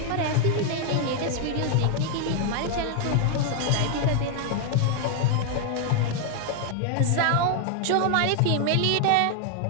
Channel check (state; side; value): different; both; correlation 0.00